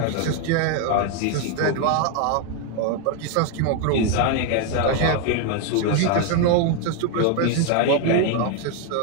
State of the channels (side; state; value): both; different; correlation 0.01